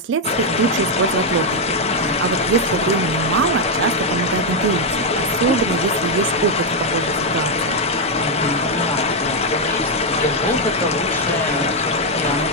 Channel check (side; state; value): both; normal; correlation 0.02